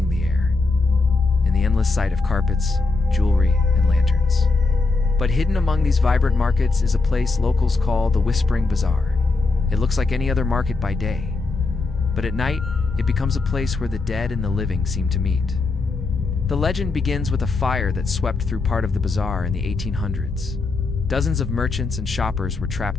the air, and the endless sight of carpets, jewelry, and lanterns. But hidden among these vibrant markets is a place locals call the Whispering Bazaar. It looks like any other market by day, but at night, it becomes a place where the dead and the living seem to meet. The legend begins with a fire that swept through part of the bazaar in the 1800s. Dozens of merchants and shoppers were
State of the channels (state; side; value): quieter; right; 3.7 dB